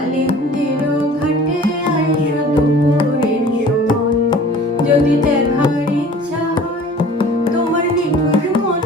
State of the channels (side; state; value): both; normal; correlation 0.47